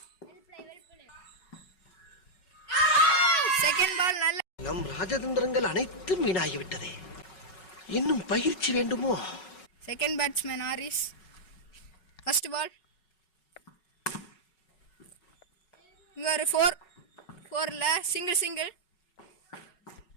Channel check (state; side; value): late; right; 5.4 ms